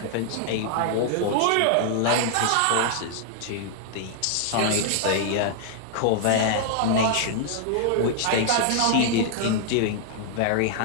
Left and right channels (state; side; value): different; both; correlation 0.00